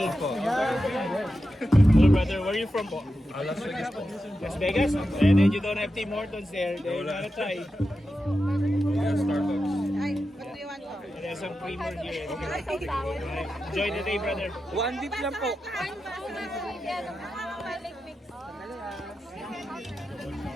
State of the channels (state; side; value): normal; both; correlation 0.90